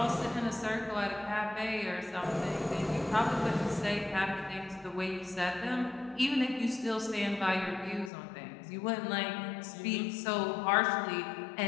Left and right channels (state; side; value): drops out; right; at 8.1 s